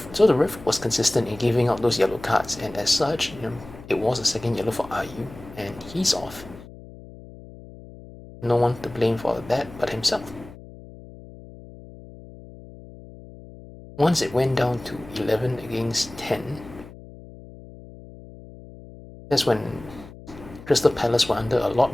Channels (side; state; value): left; noise; hum, 18 dB below the sound